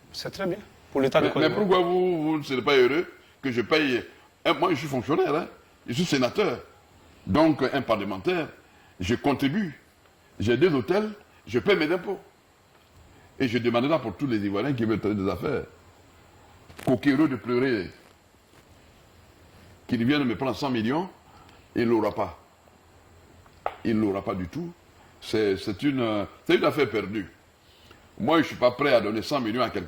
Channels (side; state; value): both; identical; correlation 1.00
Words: C'est très bien. Pour l'État. Mais pourquoi vous ne serez pas heureux que je paye... Moi, je suis fonctionnaire, hein? Je suis sénateur. Donc, un parlementaire, je contribue. J'ai 2 hôtels, je paye mes impôts. Et je demanderai pour tous les Ivoiriens qui veulent faire des affaires, coquéreux de pleurer, qu'ils viennent me prendre 100 millions, il ne l'aura pas. Il ne l'aura pas du tout. C'est une affaire perdue. Moi, je ne suis pas prêt à donner 100 millions à